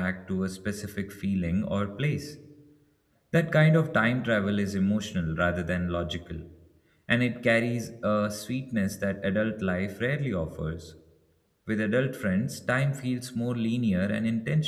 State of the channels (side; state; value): both; identical; correlation 1.00